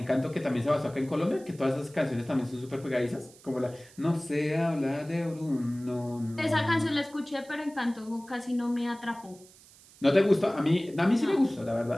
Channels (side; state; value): right; noise; hiss, 24 dB below the sound